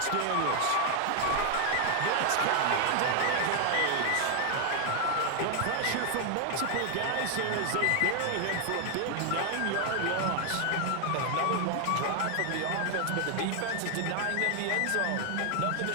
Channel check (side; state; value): both; different; correlation 0.00